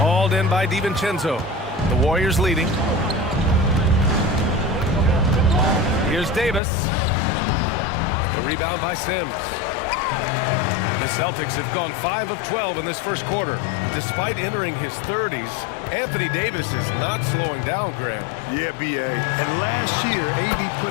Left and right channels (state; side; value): drops out; right; at 6.6 s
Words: in by DiVincenzo. The Warriors leading. Here's Davis. The rebound by Sims. The Celtics have gone 5 of 12 in this first quarter. Despite entering his 30s, Anthony Davis is not slowing down, Graham. Yeah, B.A. And last year, AD